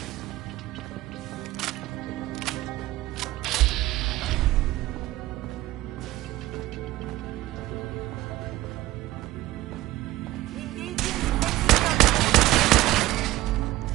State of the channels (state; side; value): quieter; left; 16.7 dB